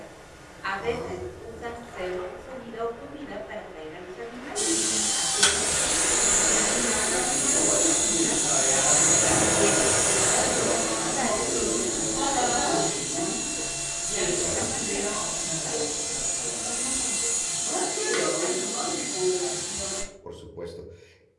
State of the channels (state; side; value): identical; both; correlation 1.00